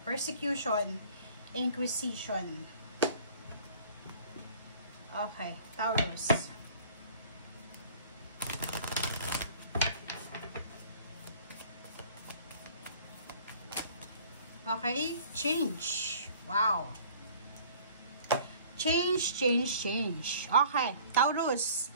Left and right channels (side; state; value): both; inverted; correlation -0.50